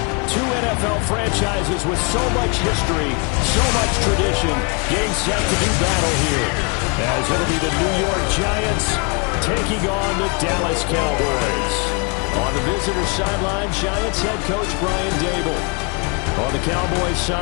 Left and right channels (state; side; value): quieter; right; 34.9 dB